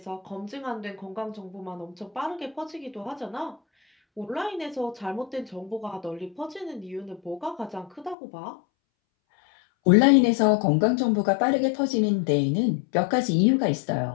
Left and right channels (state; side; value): drops out; right; at 8.2 s